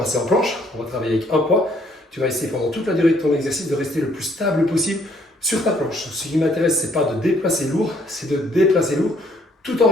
en planche. On va travailler avec un poids. Tu vas essayer pendant toute la durée de ton exercice de rester le plus stable possible sur ta planche. Ce qui m'intéresse, ce n'est pas de déplacer lourd, c'est de déplacer lourd tout en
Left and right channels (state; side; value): normal; both; correlation 0.65